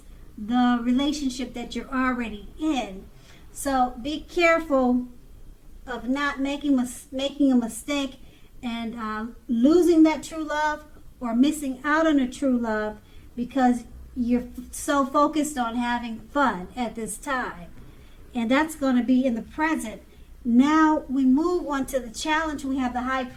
the relationship that you're already in. So be careful of not making a mistake and losing that true love or missing out on a true love because you're so focused on having fun at this time. And that's going to be in the present. Now we move on to the challenge. We have the High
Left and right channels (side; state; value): both; identical; correlation 1.00